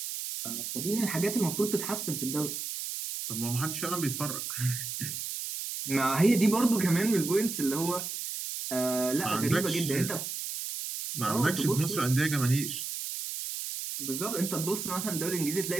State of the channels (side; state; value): right; noise; hiss, 5 dB below the sound